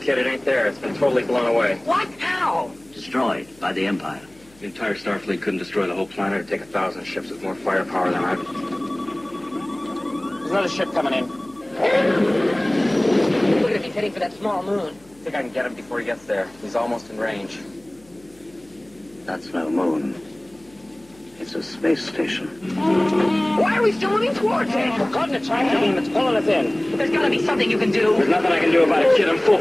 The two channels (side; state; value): left; noise; hum, 28 dB below the sound